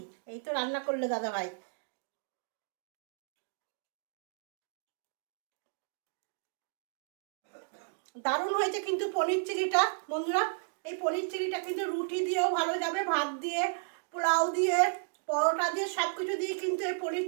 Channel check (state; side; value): silent; left; digital silence